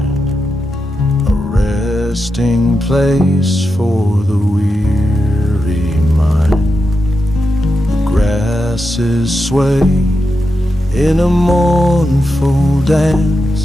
a resting place for the weary mind. The grasses sway in a mournful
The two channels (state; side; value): normal; both; correlation 0.88